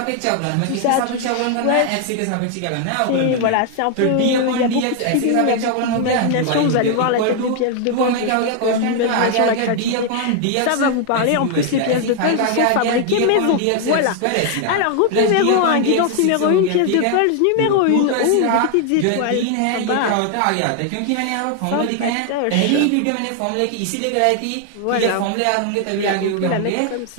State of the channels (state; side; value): different; both; correlation 0.00